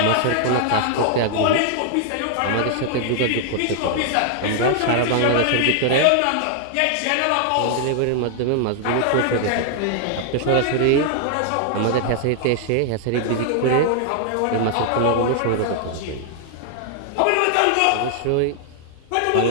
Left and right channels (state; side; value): different; both; correlation 0.00